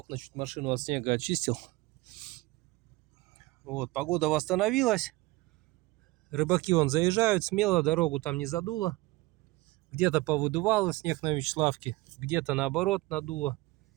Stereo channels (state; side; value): quieter; left; 20.9 dB